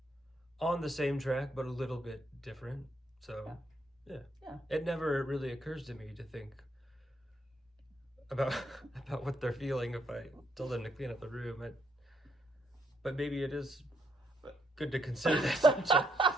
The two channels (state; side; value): normal; both; correlation 0.74